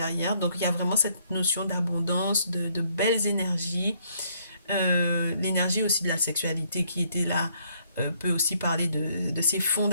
Donc il y a vraiment cette notion d'abondance, de belles énergies, l'énergie aussi de la sexualité qui était là. Peut aussi parler de ses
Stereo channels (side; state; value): both; inverted; correlation -0.68